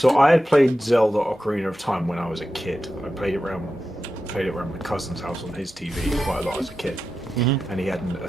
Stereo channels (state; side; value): normal; both; correlation 0.91